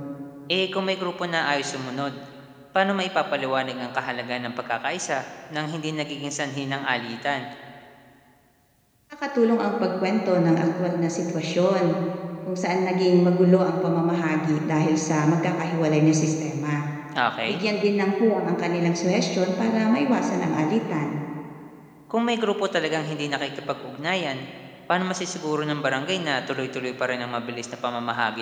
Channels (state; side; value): identical; both; correlation 1.00